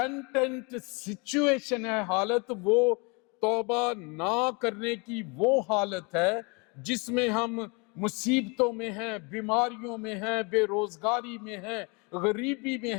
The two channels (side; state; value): right; quieter; 30.4 dB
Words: سچویشن ہے، حالت وہ توبہ نہ کرنے کی وہ حالت ہے جس میں ہم مصیبتوں میں ہیں، بیماریوں میں ہیں، بے روزگاری میں ہیں، غریبی میں